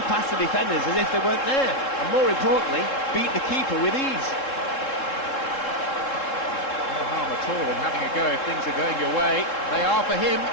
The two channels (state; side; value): late; right; 3.7 ms